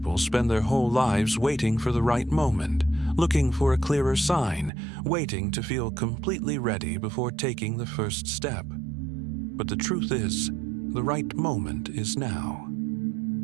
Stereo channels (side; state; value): left; drops out; at 4.7 s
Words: spend their whole lives waiting for the right moment, looking for a clearer sign, waiting to feel completely ready before taking the first step. But the truth is, the right moment is now.